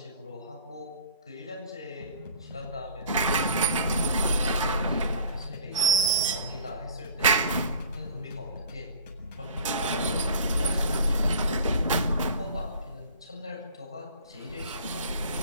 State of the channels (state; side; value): inverted; both; correlation -0.46